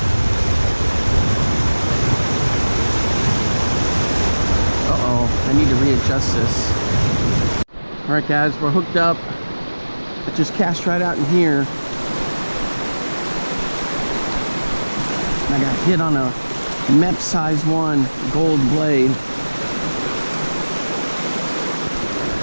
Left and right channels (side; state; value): both; inverted; correlation -1.00